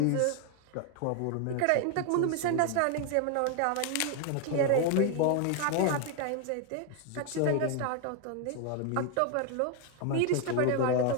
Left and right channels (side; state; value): both; different; correlation 0.01